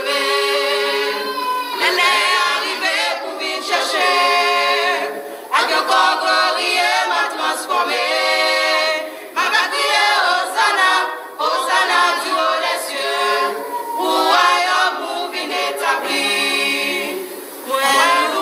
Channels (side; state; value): both; identical; correlation 1.00